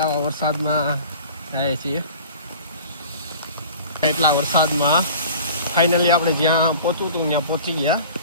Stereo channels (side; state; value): both; inverted; correlation -0.43